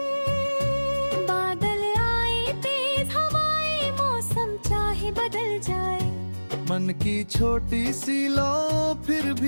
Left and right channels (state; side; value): inverted; both; correlation -1.00